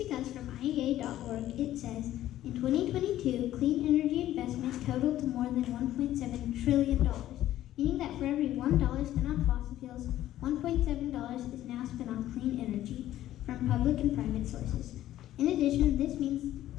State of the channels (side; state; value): right; quieter; 13.4 dB